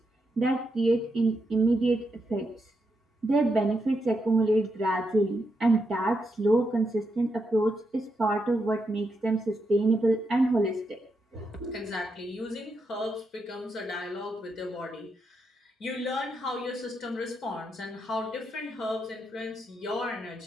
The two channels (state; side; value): normal; both; correlation 0.83